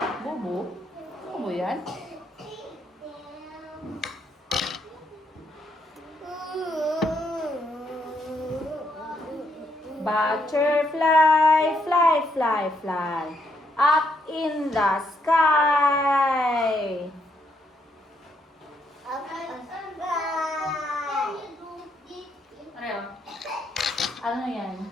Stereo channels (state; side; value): normal; both; correlation 0.75